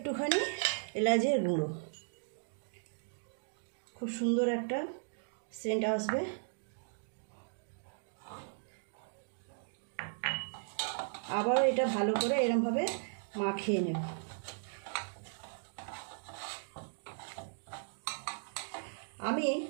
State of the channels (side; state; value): left; silent; digital silence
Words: এলাচের গুঁড়ো। খুব সুন্দর একটা সেন্ট আসবে। আবার এটা ভালো করে এরকমভাবে মাখিয়ে নেব। আমি